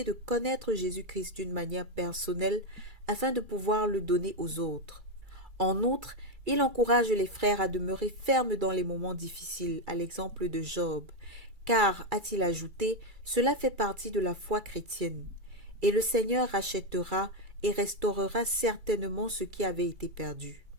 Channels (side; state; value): left; late; 2.3 ms